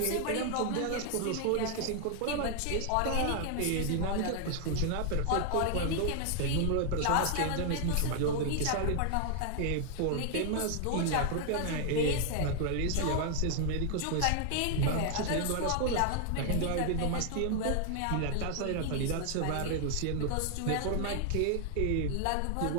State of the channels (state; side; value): different; both; correlation 0.00